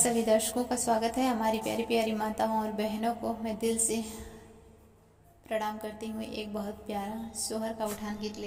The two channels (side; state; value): both; identical; correlation 1.00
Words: दर्शकों का स्वागत है। हमारी प्यारी प्यारी माताओं और बहनों को मैं दिल से प्रणाम करती हूँ। एक बहुत प्यारा सोहर का उठान गीत